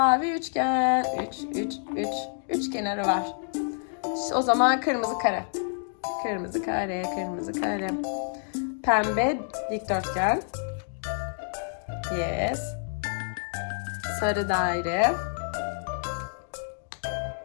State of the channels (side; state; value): right; silent; digital silence